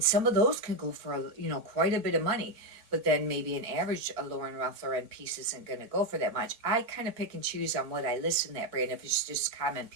some of those can go for, you know, quite a bit of money. But then maybe an average Lauren Ralph Lauren piece isn't going to go for that much. I kind of pick and choose on what I list in that brand. If it's just common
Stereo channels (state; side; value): late; left; 4.5 ms